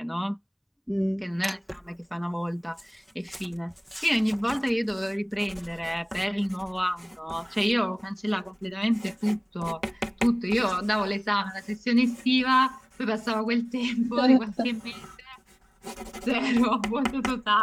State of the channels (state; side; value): identical; both; correlation 1.00